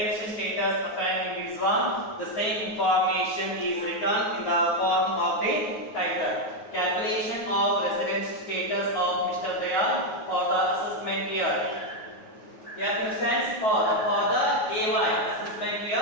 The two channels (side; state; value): right; late; 9.4 ms